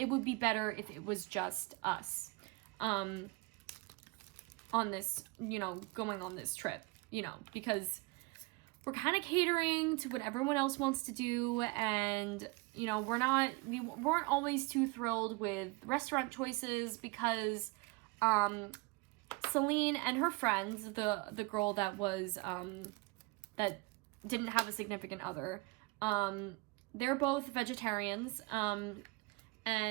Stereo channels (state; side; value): quieter; left; 26.0 dB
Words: would be better if it was just us on this, going on this trip, because we're kind of catering to what everyone else wants to do, and, we weren't always too thrilled with restaurant choices, because Celine and her friends, the girl that was, that didn't have a significant other, they're both vegetarians,